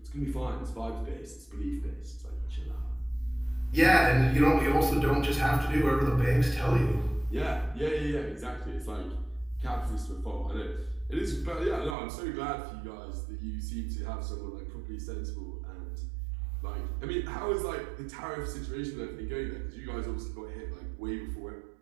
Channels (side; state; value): left; drops out; at 12.0 s